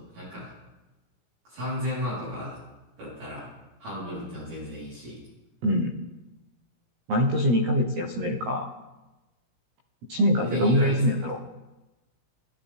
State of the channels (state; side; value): late; left; 17 ms